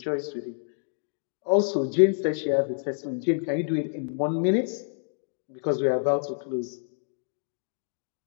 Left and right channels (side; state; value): right; silent; digital silence